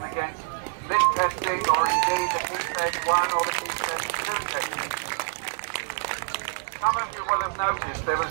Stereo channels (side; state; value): left; silent; digital silence